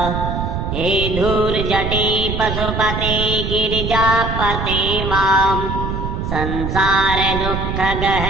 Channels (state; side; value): noise; right; rumble, 3 dB below the sound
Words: हे धूर्जटे पशुपते गिरिजापते मां संसार